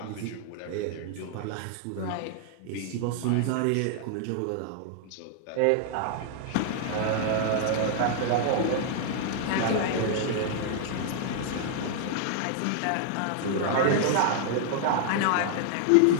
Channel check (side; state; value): both; different; correlation -0.01